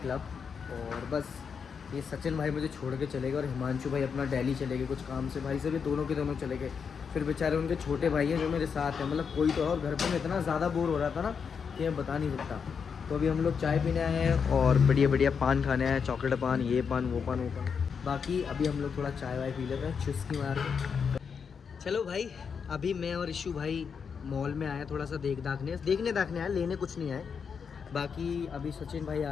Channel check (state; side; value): quieter; right; 6.3 dB